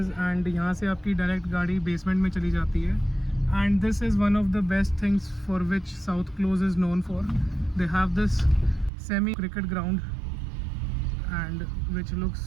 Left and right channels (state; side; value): drops out; left; at 8.9 s